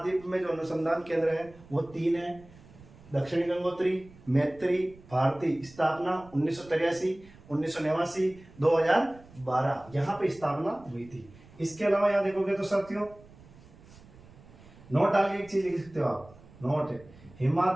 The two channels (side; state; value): right; noise; rumble, 23 dB below the sound